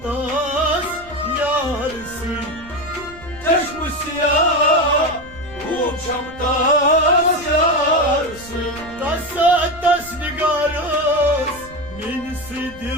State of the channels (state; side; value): noise; right; rumble, 20 dB below the sound